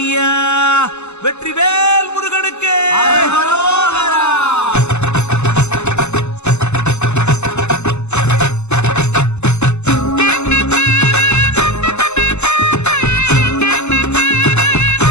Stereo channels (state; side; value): late; right; 0.82 ms